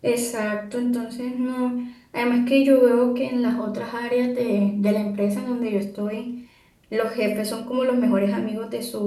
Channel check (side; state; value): both; identical; correlation 1.00